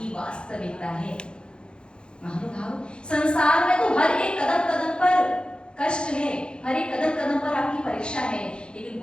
वास्तविकता है। महानुभाव, संसार में तो हर एक कदम कदम पर कष्ट है, हर एक कदम कदम पर आपकी परीक्षा है, लेकिन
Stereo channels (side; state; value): right; late; 0.052 ms